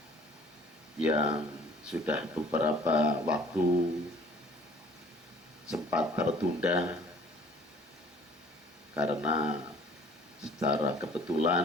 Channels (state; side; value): normal; both; correlation 0.53